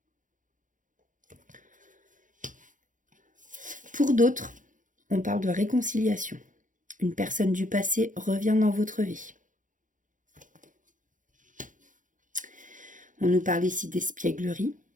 Pour d'autres, on parle de réconciliation. Une personne du passé revient dans votre vie. On nous parle ici d'espièglerie.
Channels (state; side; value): late; left; 0.38 ms